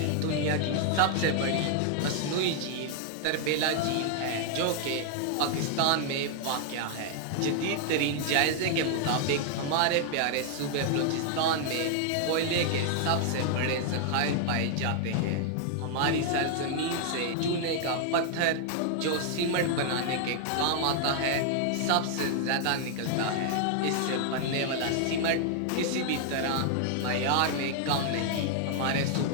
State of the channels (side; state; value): both; different; correlation 0.00